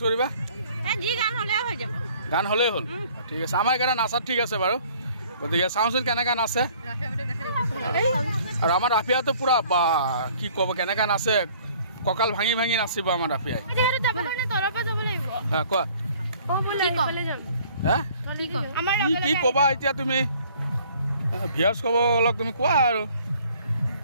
কৰিবা গান হ'লেই হ'ল ঠিক আছে আমাৰ এইকেইটা নাচাত ঠিক আছে বাৰু গতিকে চাওঁচোন কেনেকৈ নাচে আৰু আমাৰ ৰাফিয়াটো পূৰা বা কি ক'ব কেনেকৈ নাচে কঁকাল ভাঙি ভাঙি নাচিব আমাৰ ৰাফিয়াই কোৱা কি ক'বা এতিয়া তুমি ভিউৱাৰ্ছ ক'ব অলপ তুমি কোৱা আৰু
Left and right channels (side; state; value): both; inverted; correlation -0.56